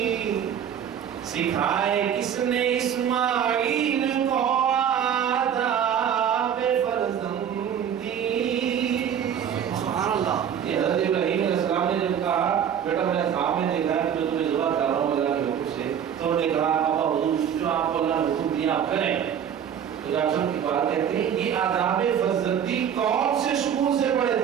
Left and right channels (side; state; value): left; quieter; 8.7 dB